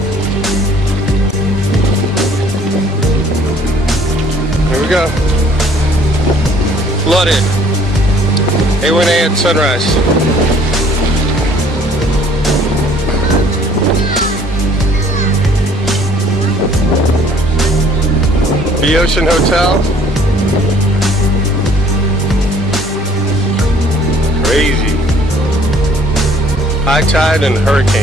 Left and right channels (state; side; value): normal; both; correlation 0.57